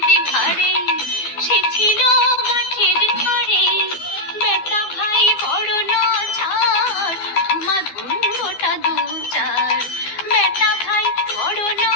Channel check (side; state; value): right; late; 12 ms